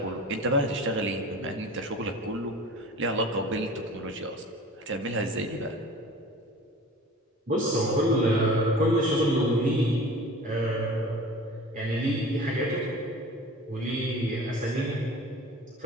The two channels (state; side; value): normal; both; correlation 0.41